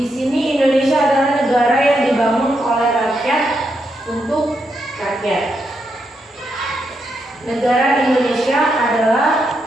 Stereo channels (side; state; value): both; normal; correlation 0.81